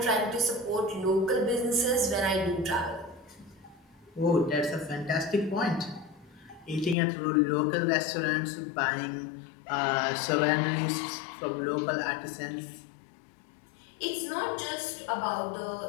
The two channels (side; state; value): right; drops out; at 7.0 s